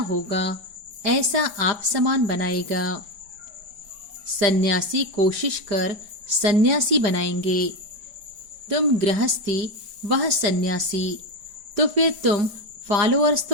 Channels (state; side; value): late; left; 5.1 ms